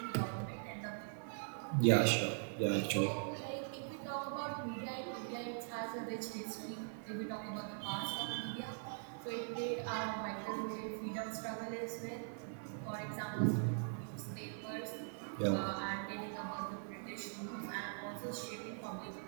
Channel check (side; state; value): left; silent; digital silence